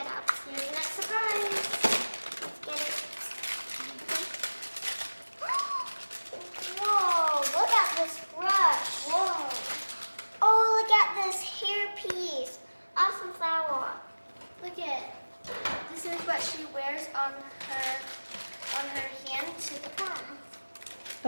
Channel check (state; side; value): inverted; both; correlation -1.00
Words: up. Here's the next surprise. Let's get it. Whoa, look at this brush. Whoa. Oh, look at this hair piece. Awesome flower. Look at this is what she wears on her hand to the prom.